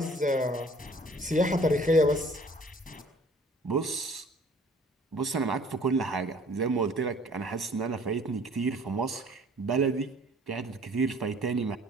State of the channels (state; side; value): normal; both; correlation 0.53